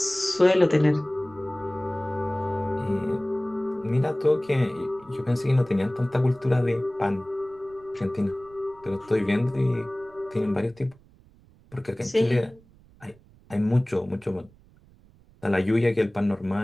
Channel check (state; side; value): noise; right; rumble, 27 dB below the sound